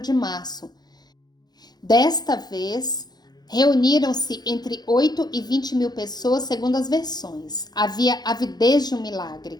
março. Desta vez, reuniram-se entre 8 e 20.000 pessoas, segundo as versões. Havia avidez de um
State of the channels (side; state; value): right; late; 0.20 ms